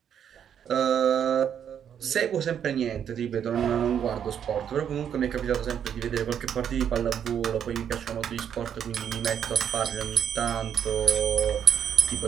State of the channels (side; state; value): left; quieter; 8.7 dB